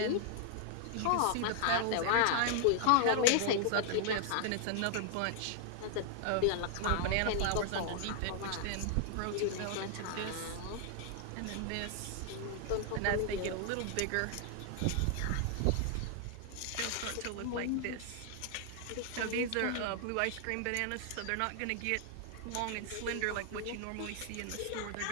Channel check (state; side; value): different; both; correlation 0.00